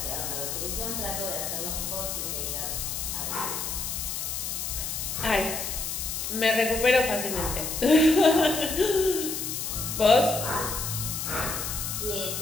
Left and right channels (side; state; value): left; noise; hiss, 3 dB below the sound